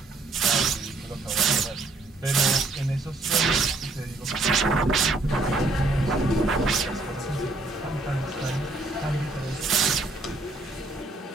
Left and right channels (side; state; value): left; quieter; 3.2 dB